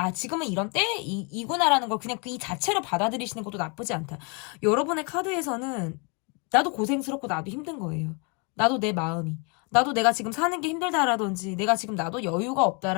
지금은 이런 때이구나라는 걸 그냥 이 자체로 받아들이시는 것도 나쁘지 않다. 여러분의 카드에서는 나도 고생스럽고 나도 힘든 거예요. 나도 내 마음이. 나도 내가 지금 사는 게 힘들다라든지 내가 지금 나도 여유가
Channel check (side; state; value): right; quieter; 33.6 dB